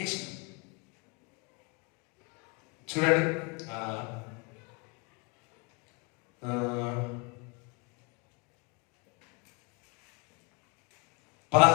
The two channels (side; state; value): right; quieter; 31.7 dB